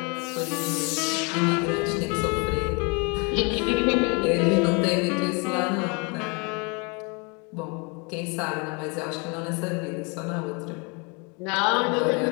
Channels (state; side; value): quieter; right; 31.8 dB